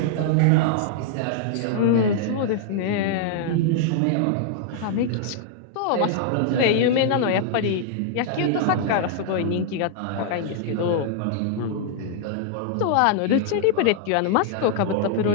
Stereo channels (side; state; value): both; different; correlation -0.01